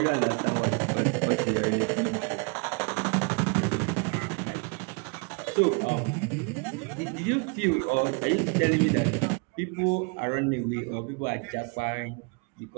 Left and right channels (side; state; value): left; quieter; 32.6 dB